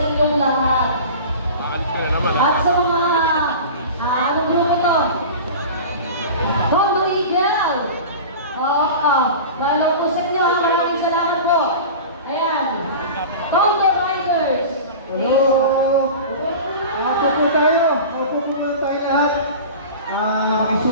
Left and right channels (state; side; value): inverted; both; correlation -0.34